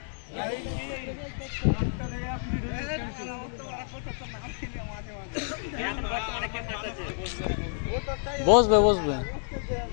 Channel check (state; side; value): silent; right; digital silence